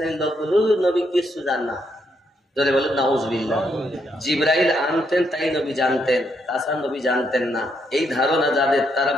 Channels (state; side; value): normal; both; correlation 0.76